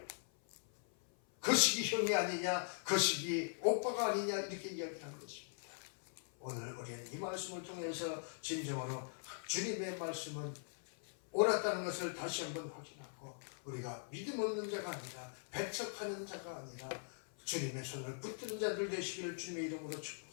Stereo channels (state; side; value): silent; right; 50 dB below the other